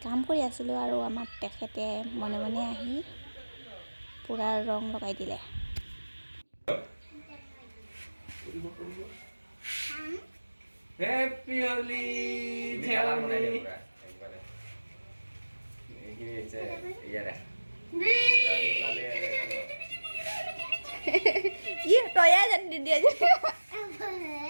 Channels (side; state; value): both; inverted; correlation -1.00